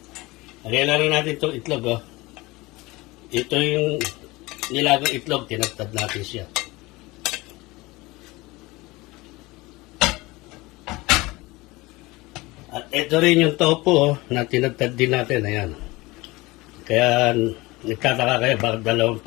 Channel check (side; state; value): right; quieter; 21.7 dB